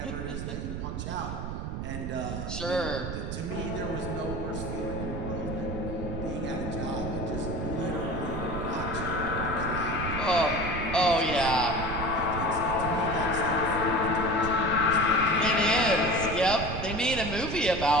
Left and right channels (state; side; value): noise; right; rumble, 5 dB below the sound